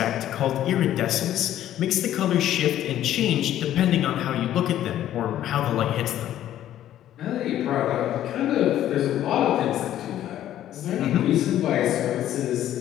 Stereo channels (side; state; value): right; quieter; 12.2 dB